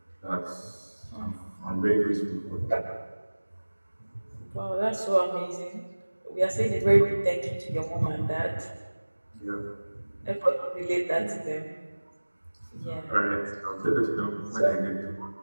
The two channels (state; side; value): inverted; both; correlation -1.00